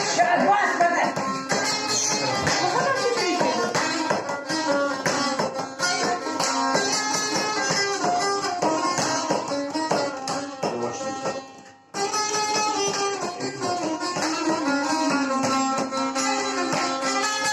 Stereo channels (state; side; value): identical; both; correlation 1.00